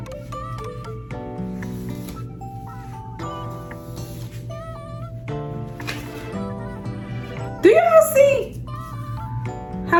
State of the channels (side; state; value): both; identical; correlation 1.00